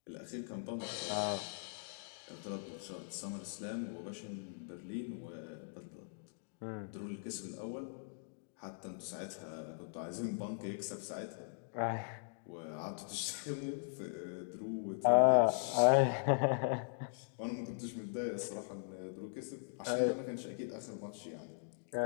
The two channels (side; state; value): right; silent; digital silence